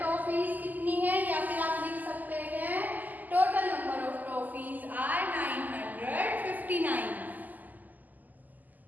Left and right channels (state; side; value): late; left; 0.083 ms